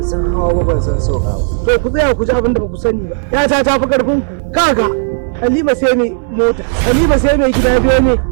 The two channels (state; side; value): silent; left; 72 dB below the other